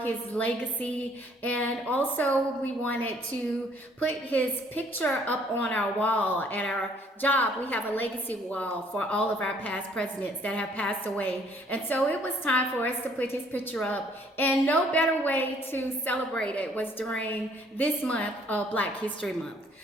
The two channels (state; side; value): normal; both; correlation 0.61